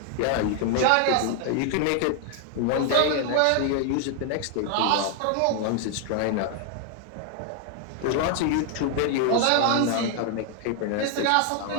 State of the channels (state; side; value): different; both; correlation 0.00